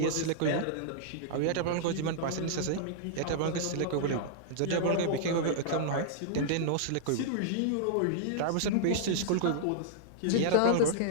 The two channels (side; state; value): both; different; correlation -0.01